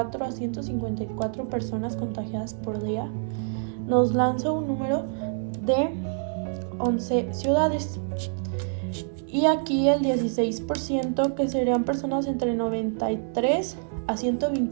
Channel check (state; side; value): silent; left; 60 dB below the other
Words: a 154 personas contagiadas por día, nos lanza un número de 11 ciudades. Y aquí el 16%, que serían personas entre 93 a